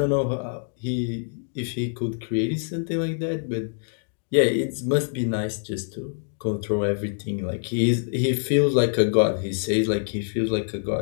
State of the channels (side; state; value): right; silent; digital silence